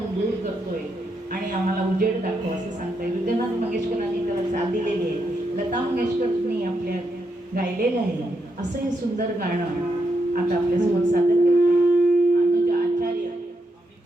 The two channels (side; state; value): both; normal; correlation 0.82